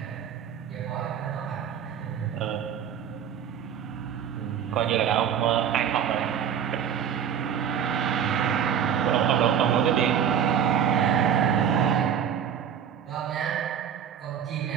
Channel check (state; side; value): quieter; left; 8.5 dB